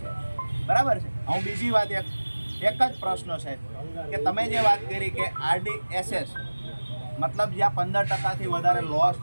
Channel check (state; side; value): inverted; both; correlation -1.00